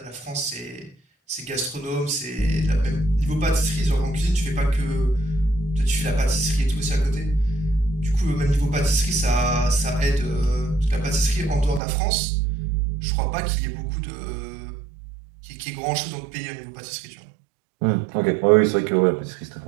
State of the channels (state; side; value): drops out; left; at 11.8 s